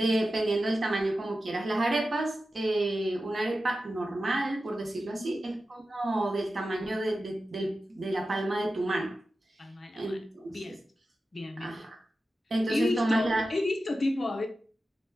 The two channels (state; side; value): normal; both; correlation 0.92